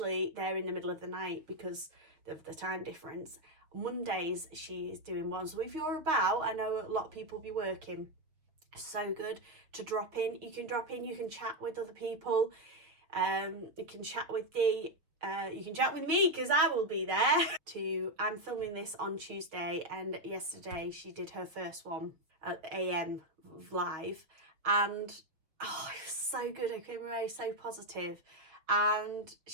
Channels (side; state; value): left; late; 6.3 ms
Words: they're in the middle of the night because of the time difference. Mondays, she is doing one. So if you're about, I know a lot of people be working. So good to drop in. You can drop in, you can chat with other people. You can chat with Dee. You can chat with me because I will be there. I'm filming this on Tuesday, and yesterday she did her first one at AM live, and it was so good. I came away so positive, and